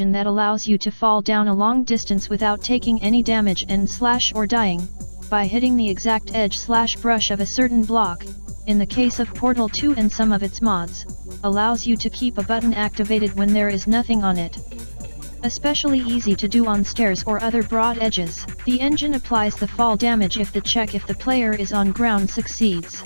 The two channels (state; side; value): inverted; both; correlation -1.00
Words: that allows you to fall down a long distance without taking any damage and slash or dying, by hitting the exact edge/brush of a certain block. In the case of Portal 2 and some of its mods, allows you to keep a button activated when there is nothing on it. Especially easy to do on stairs or other broad edges. The engine applies the fall damage if the check if the player is on ground succeeds.